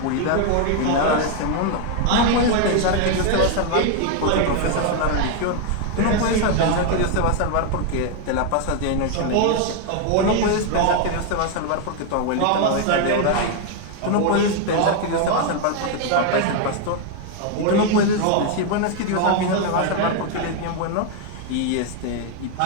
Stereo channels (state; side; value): different; both; correlation 0.00